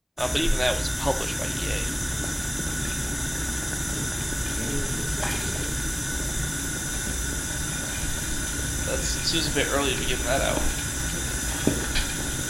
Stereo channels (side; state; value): both; identical; correlation 1.00